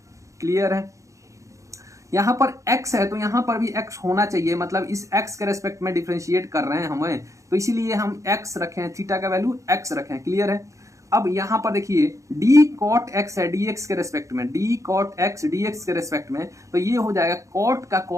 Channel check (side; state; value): left; late; 0.15 ms